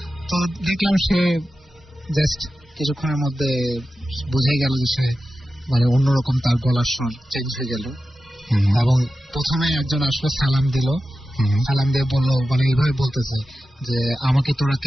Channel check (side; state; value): both; normal; correlation 0.93